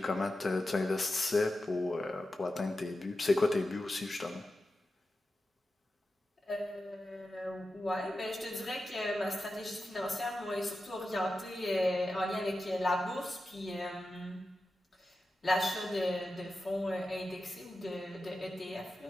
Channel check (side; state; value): both; normal; correlation 0.92